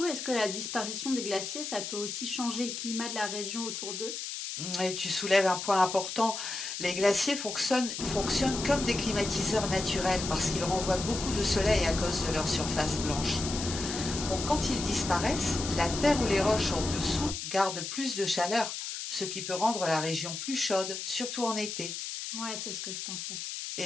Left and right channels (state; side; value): noise; left; hiss, 6 dB below the sound